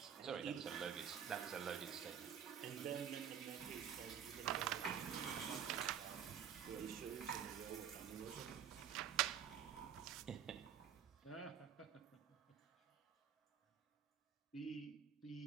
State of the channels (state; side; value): quieter; left; 8.6 dB